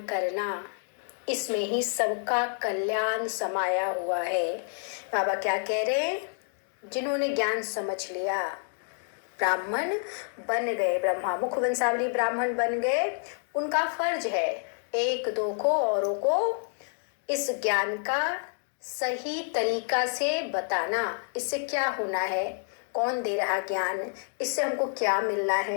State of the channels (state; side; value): silent; right; 59 dB below the other